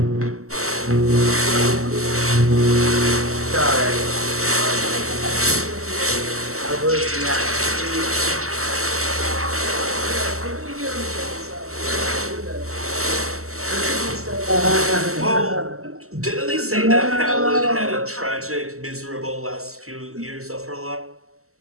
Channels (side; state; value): left; late; 0.63 ms